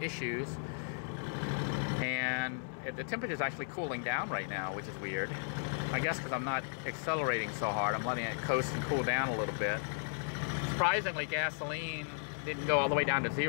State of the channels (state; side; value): silent; right; digital silence